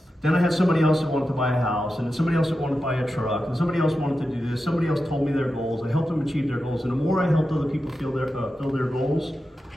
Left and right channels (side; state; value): both; normal; correlation 0.91